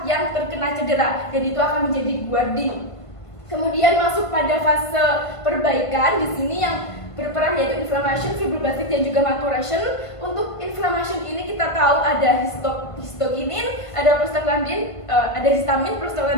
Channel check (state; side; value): late; right; 1.5 ms